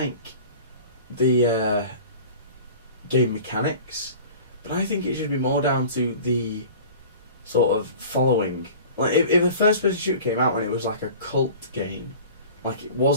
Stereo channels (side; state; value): both; inverted; correlation -0.41